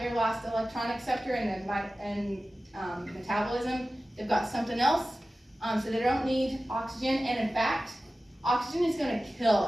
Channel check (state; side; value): normal; both; correlation 0.95